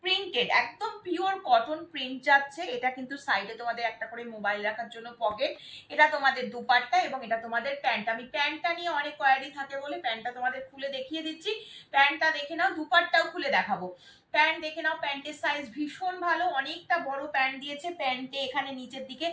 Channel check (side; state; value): both; identical; correlation 1.00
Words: প্রিন্টেড, একদম পিওর কটন প্রিন্ট যাচ্ছে। এটা কিন্তু সাইডে তোমাদের একটা করে মোবাইল রাখার জন্য পকেট। এটা তোমাদের দুপাট্টা এবং এটা তোমাদের প্যান্ট। আমি প্যান্টটা নিয়ে অনেক কোয়ারি থাকে বলে প্যান্টটা তোমাদের খুলে দেখিয়ে দিচ্ছি। প্যান্টটা দেখে নাও, দুপাট্টাও খুলে দেখাবো। প্যান্ট দেখে নাও, প্যান্টের সাইজ ভীষণ ভালো, অনেকটা বড় প্যান্ট দিয়েছে। প্যান্টে এখানে নিচের দিকে